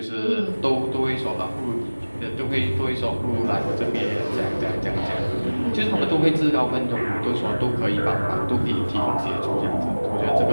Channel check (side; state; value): both; inverted; correlation -1.00